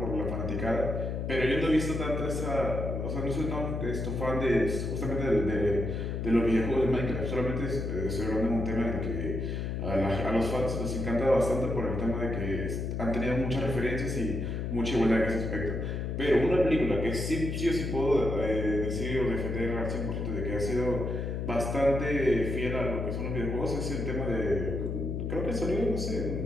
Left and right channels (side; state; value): left; noise; hum, 2 dB below the sound